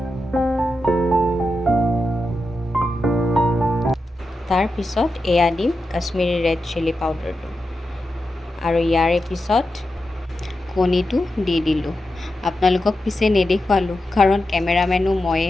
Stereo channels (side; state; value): both; normal; correlation 0.89